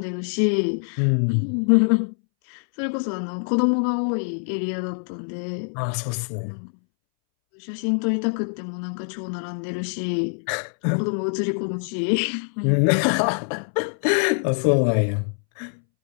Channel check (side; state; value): right; silent; 63 dB below the other